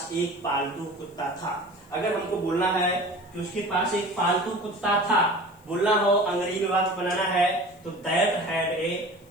एक पालतू कुत्ता था। अगर हमको बोलना है कि उसके पास एक पालतू कुत्ता था, बोलना हो अंग्रेजी में वाक्य बनाना है, तो that had a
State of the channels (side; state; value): left; noise; hiss, 30 dB below the sound